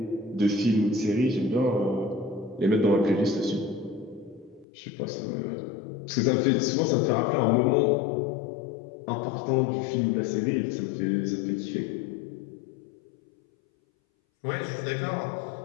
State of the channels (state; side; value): drops out; right; at 4.7 s